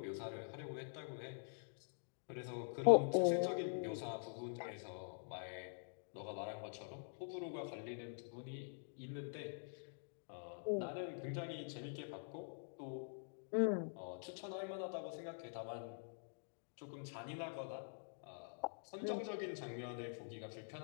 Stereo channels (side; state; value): right; silent; digital silence